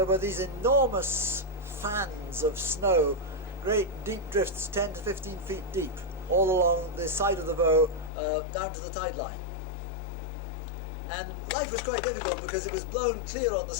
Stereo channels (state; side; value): drops out; right; at 8.1 s